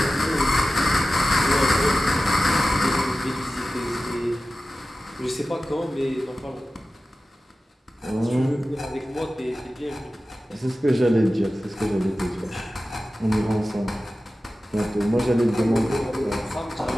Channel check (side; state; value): both; normal; correlation 0.95